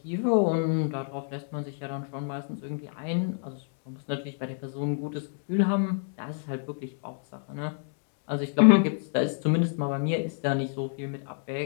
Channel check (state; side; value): silent; right; digital silence